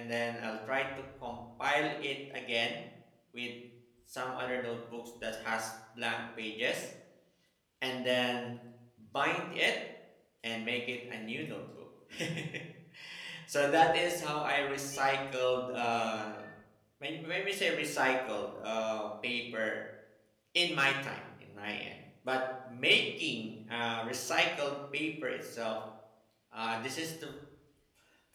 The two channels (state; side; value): identical; both; correlation 1.00